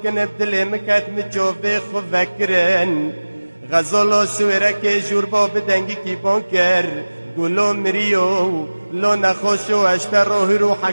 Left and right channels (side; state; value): both; inverted; correlation -1.00